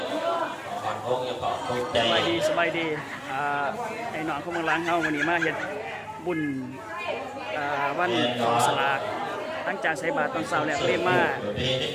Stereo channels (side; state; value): both; identical; correlation 1.00